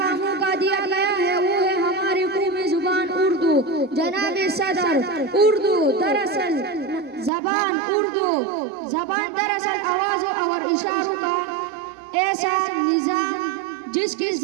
موقع دیا گیا ہے وہ ہے ہماری قومی زبان اردو۔ جناب صدر، اردو دراصل زبان دراصل آوازوں اور اشاروں کا ایسا نظام جس کے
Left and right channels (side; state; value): left; drops out; at 7.3 s